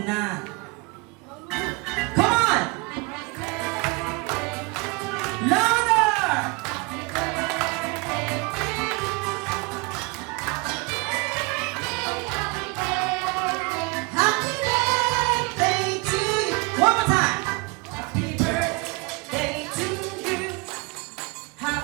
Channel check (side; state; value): left; quieter; 28.1 dB